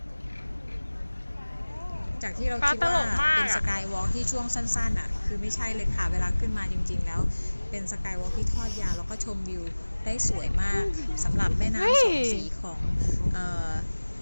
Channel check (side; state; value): both; inverted; correlation -1.00